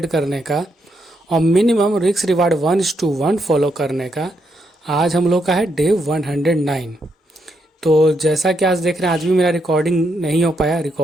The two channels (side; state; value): both; normal; correlation 0.79